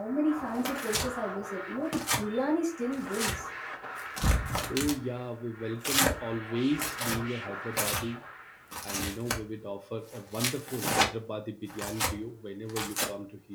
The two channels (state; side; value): identical; both; correlation 1.00